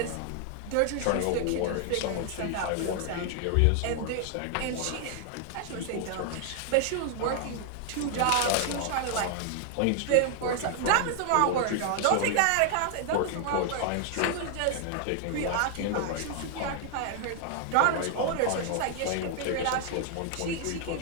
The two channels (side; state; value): both; different; correlation 0.00